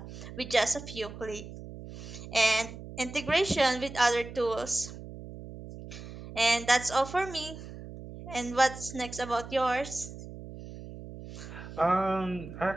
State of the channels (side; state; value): right; noise; hum, 13 dB below the sound